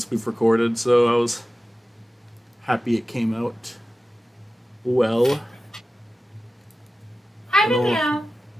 we've recorded, so I was happy it came out well. Hi, Hello. meow.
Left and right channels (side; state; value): both; normal; correlation 0.95